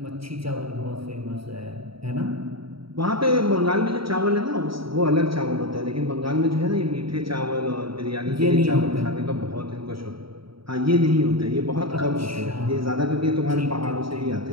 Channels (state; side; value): late; left; 0.75 ms